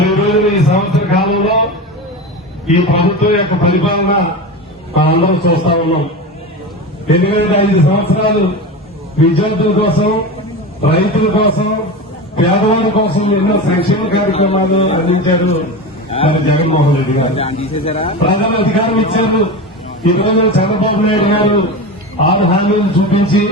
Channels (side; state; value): both; normal; correlation 0.25